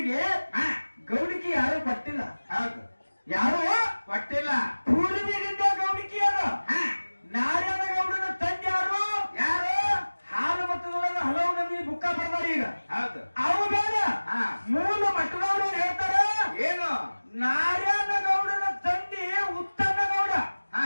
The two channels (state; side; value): inverted; both; correlation -1.00